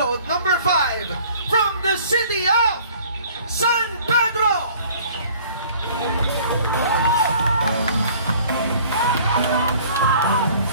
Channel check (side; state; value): both; inverted; correlation -0.52